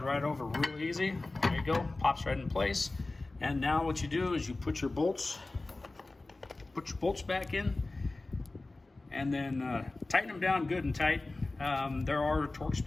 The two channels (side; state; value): right; quieter; 3.1 dB